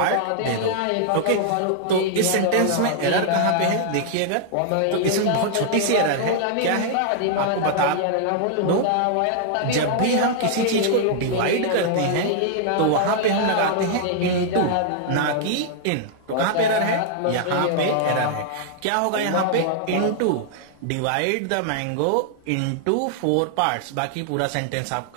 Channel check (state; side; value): different; both; correlation -0.01